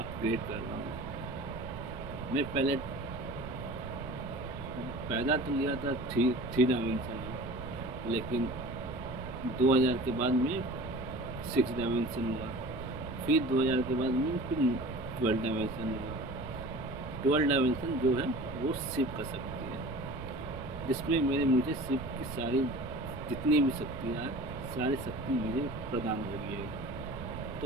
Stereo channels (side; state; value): right; noise; rumble, 9 dB below the sound